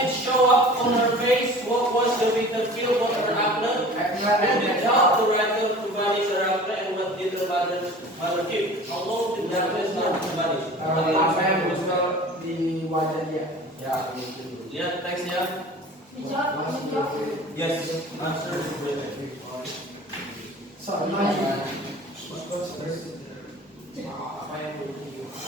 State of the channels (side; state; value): both; normal; correlation 0.42